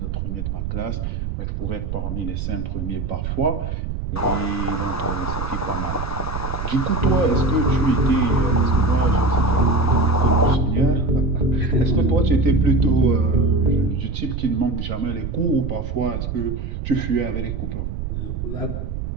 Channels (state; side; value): noise; right; rumble, 5 dB below the sound